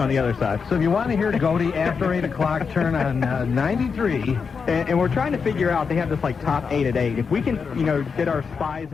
on the other side. So if you want to hear Goaty after 8 o'clock, turn on 93. And we're trying to figure out, they have this like top 8 at 8. If we can, get our spies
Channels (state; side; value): quieter; right; 5.6 dB